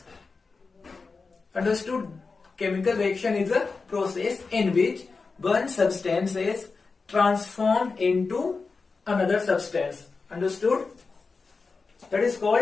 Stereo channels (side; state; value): right; quieter; 4.4 dB